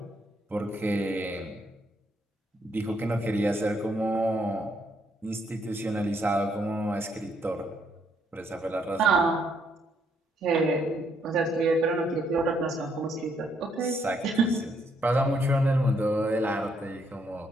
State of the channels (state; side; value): normal; both; correlation 0.72